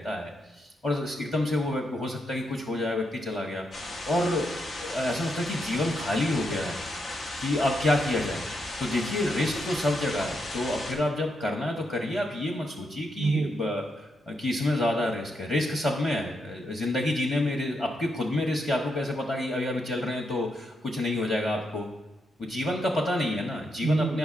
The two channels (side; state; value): both; normal; correlation 0.81